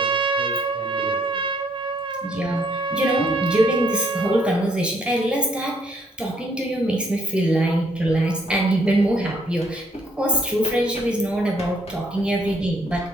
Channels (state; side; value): normal; both; correlation 0.67